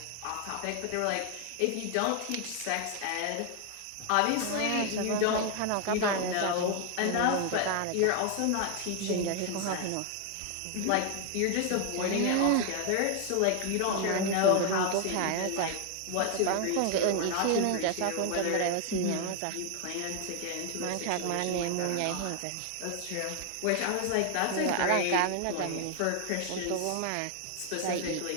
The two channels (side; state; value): both; different; correlation 0.00